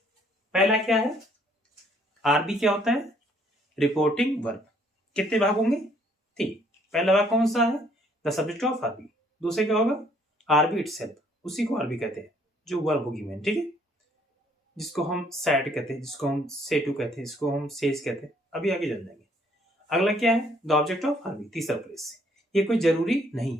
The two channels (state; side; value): normal; both; correlation 0.64